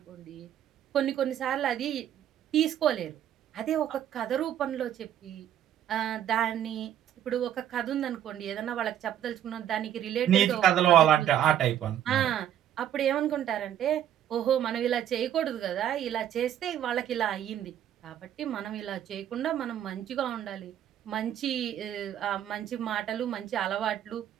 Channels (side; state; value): left; quieter; 10.8 dB